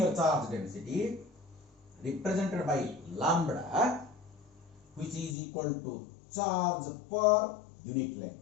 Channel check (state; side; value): drops out; right; at 5.4 s